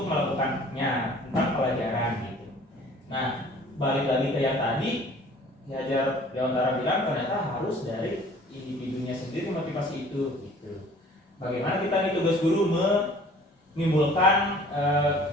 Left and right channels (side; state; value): both; normal; correlation 0.51